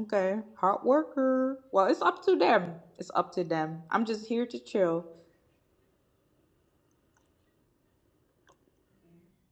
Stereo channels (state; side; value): identical; both; correlation 1.00